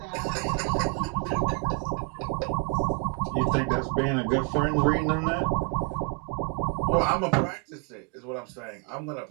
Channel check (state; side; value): quieter; left; 36.8 dB